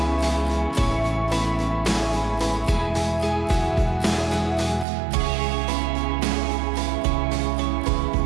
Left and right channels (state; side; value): drops out; left; at 4.9 s